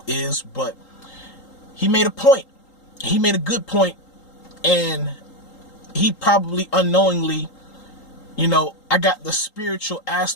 is, but he made a point. He made a good point, and he probably unknowingly, you know, I got the spiritual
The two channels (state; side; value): late; right; 3.8 ms